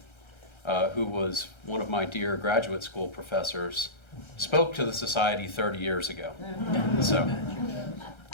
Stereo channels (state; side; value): late; right; 1.3 ms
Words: who was one of my dear graduate school professors, spoke to the Society 30 years ago. So